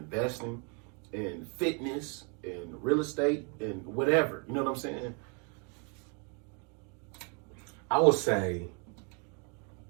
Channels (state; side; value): quieter; left; 36.1 dB